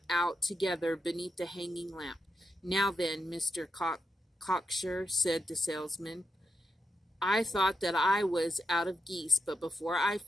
out together beneath the hanging lamp. "Now then, Mr. Cocksure," said the salesman, "I thought that I was out of geese, but before I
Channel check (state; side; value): normal; both; correlation 0.84